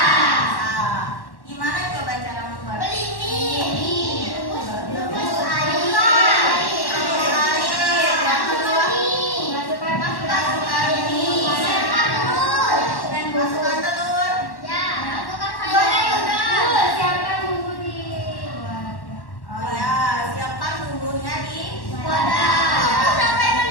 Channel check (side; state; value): right; late; 1.1 ms